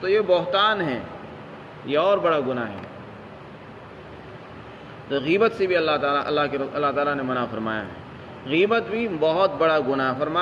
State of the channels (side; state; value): both; identical; correlation 1.00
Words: یہ بہتان ہے، یہ اور بڑا گناہ ہے۔ تو غیبت سے بھی اللہ تعالیٰ نے منع فرمایا ہے۔ غیبت بھی بہت بڑا گناہ،